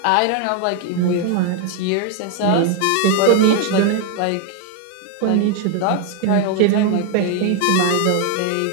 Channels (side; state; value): both; different; correlation 0.01